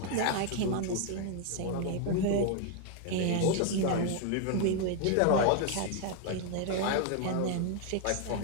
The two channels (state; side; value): different; both; correlation 0.00